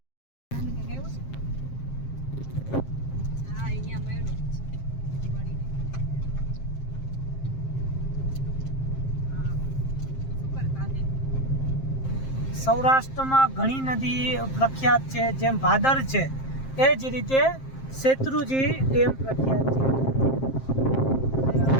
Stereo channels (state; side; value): late; right; 7.5 ms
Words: સૌરાષ્ટ્રમાં ઘણી નદી પ્રખ્યાત છે, જેમ ભાદર છે એ જ રીતે શેત્રુજી ડેમ પ્રખ્યાત છે.